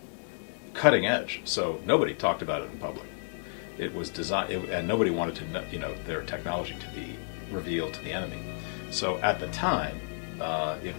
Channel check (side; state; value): right; silent; digital silence